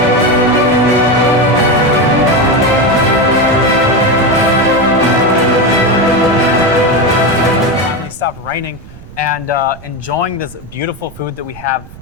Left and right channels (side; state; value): right; noise; rumble, 19 dB below the sound